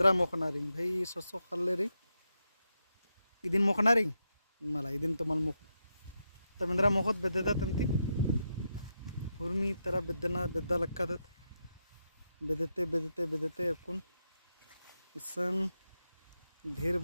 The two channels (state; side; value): inverted; both; correlation -0.85